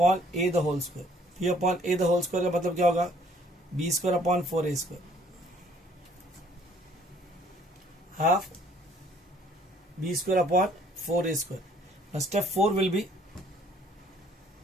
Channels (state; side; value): normal; both; correlation 0.60